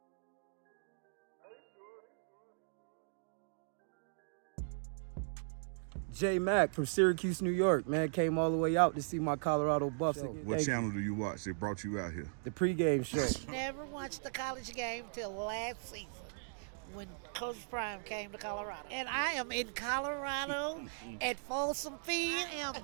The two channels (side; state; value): left; silent; digital silence